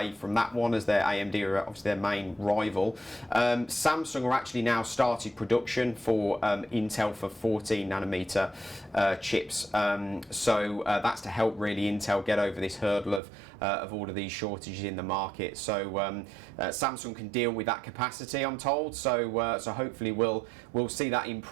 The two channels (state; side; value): drops out; left; at 13.2 s